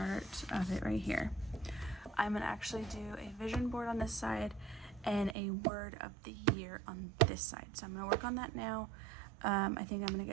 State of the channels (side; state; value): left; drops out; at 5.4 s